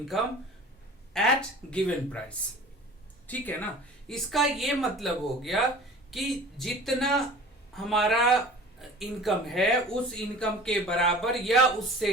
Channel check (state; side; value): normal; both; correlation 0.42